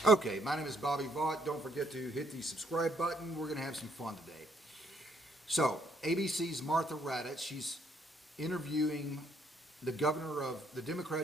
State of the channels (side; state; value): both; normal; correlation 0.69